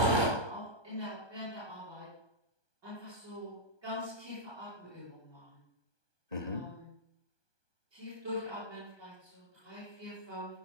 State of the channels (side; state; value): left; late; 1.2 ms